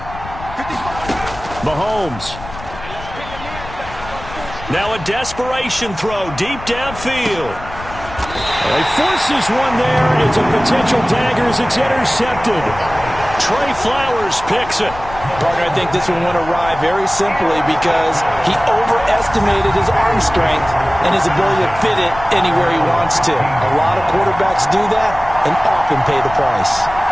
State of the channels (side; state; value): left; noise; rumble, 14 dB below the sound